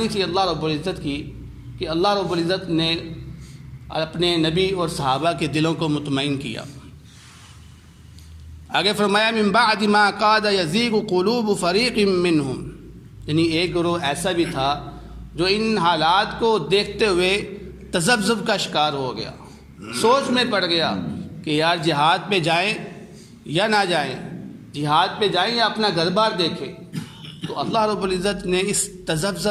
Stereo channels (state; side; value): identical; both; correlation 1.00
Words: تھی اللہ رب العزت کی کہ اللہ رب العزت نے اپنے نبی اور صحابہ کے دلوں کو مطمئن کیا۔ آگے فرمایا من بعد ما کاد یزیغ قلوب فریق منہم، یعنی ایک گروہ ایسا بھی تھا جو ان حالات کو دیکھتے ہوئے تذبذب کا شکار ہو گیا، سوچ میں پڑ گیا کہ یار جہاد پہ جائیں یا نہ جائیں، جہاد پہ جائیں یا اپنا گھر بار دیکھیں۔ تو اللہ رب العزت نے اس